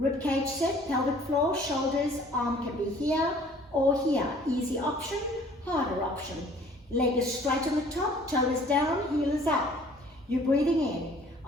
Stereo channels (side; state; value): both; normal; correlation 0.54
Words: cage set, pelvic floor, shoulders, arm can be here or here. Easy option, harder option. Leg is straight on the top, toe is down, heel is up. You're breathing in.